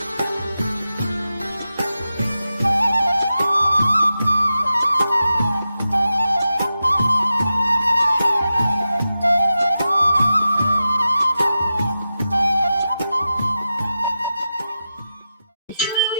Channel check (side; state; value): both; inverted; correlation -0.91